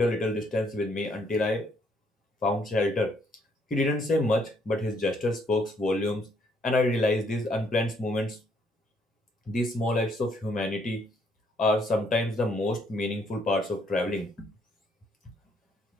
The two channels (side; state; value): both; normal; correlation 0.69